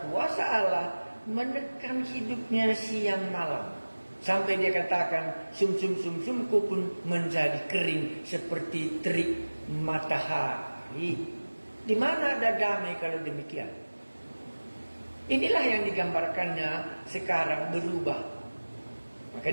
kuasa Allah menekan hidupnya siang malam. Sampai dia katakan, sumsumku pun menjadi kering seperti terik matahari. Di mana ada damai kalau demikian? Inilah yang digambarkannya sekarang berubah. Maka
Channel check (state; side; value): inverted; both; correlation -1.00